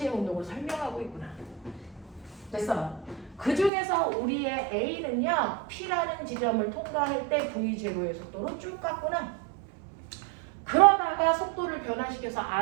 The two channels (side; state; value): left; drops out; at 3.7 s